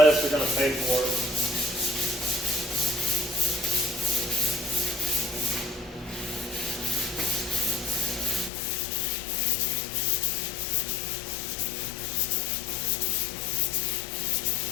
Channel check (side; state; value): right; drops out; at 8.5 s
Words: you're going to pay for it.